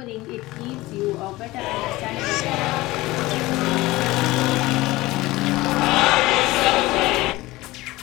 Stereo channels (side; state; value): right; quieter; 19.3 dB